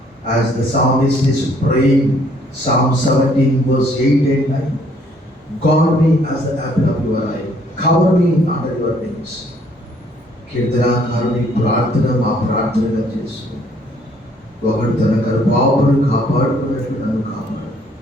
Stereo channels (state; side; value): normal; both; correlation 0.63